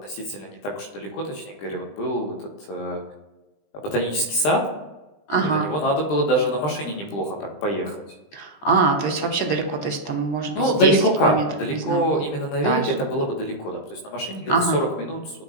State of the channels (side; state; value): right; late; 20 ms